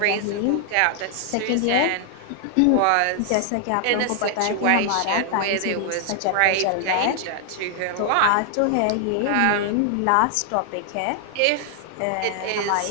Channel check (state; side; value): different; both; correlation 0.00